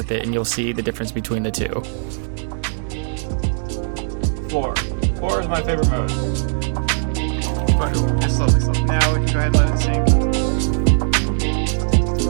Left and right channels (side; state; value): left; silent; digital silence